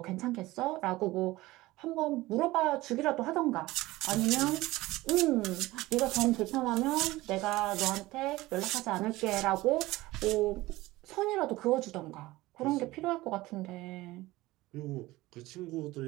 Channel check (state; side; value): quieter; left; 18.7 dB